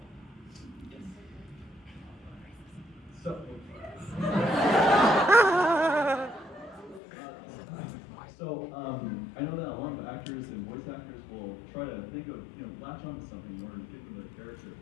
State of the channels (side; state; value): right; drops out; at 7.0 s